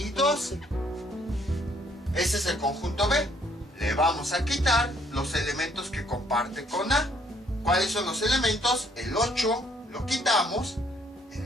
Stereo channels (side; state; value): both; normal; correlation 0.65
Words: 12. Ese es el conjunto B. Le vamos a quitar los elementos que comparte con A. ¿Cuáles son los elementos? El 8 lo quitamos,